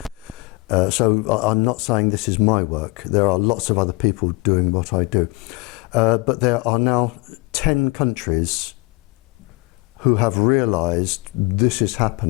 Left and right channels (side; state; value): right; quieter; 23.9 dB